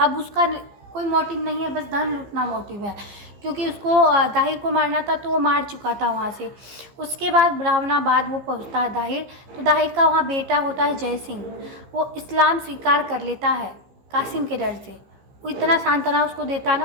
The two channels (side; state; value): left; late; 15 ms